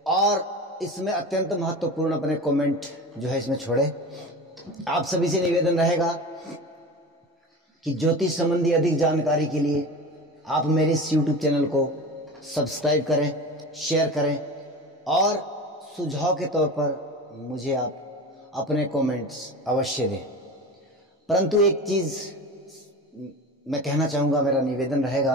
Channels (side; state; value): both; normal; correlation 0.31